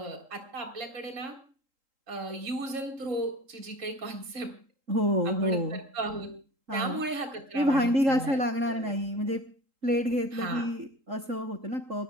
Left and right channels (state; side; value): late; left; 3.8 ms